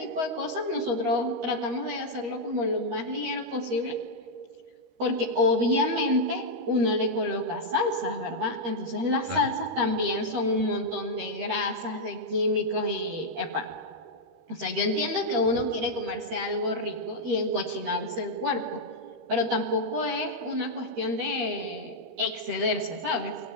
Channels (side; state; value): left; late; 13 ms